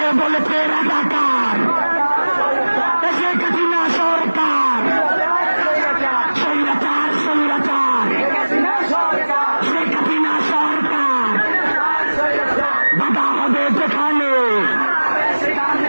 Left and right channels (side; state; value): both; inverted; correlation -1.00